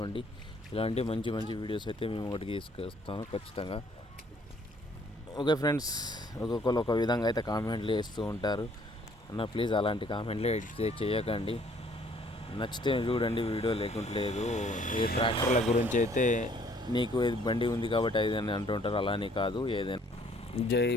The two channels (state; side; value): normal; both; correlation 0.61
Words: ఇలాంటి మంచి మంచి వీడియోస్ అయితే మేము ఒకటికి తీసుకొస్తాను ఖచ్చితంగా. ఓకే ఫ్రెండ్స్, ఒక్కొక్కరు ఒక విధంగా అయితే కామెంట్లు వేస్తూ ఉంటారు అన్న. ప్లీజ్ అలాంటి కామెంట్లే చేయకండి. నచ్చితే చూడండి వీడియో, లేకుంటే లేదు. ఏ ట్రాక్టర్ల గురించి అయితే నీకు బండి ఉంది కాబట్టి అది అని అంటుంటారు, అలానే కాదు. ఏదైనా జై